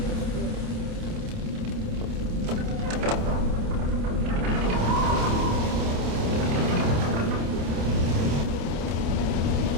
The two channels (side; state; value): left; late; 28 ms